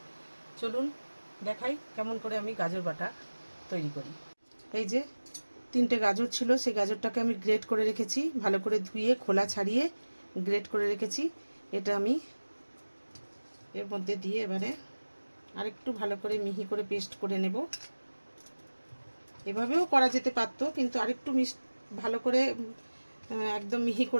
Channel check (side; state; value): both; inverted; correlation -1.00